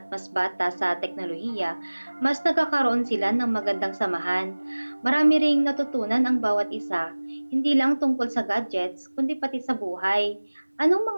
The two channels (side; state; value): both; inverted; correlation -1.00